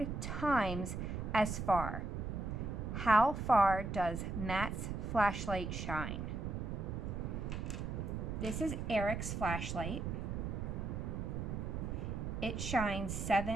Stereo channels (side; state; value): right; noise; rumble, 3 dB below the sound